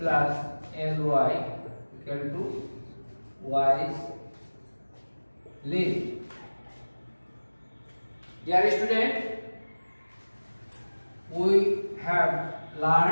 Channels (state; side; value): inverted; both; correlation -1.00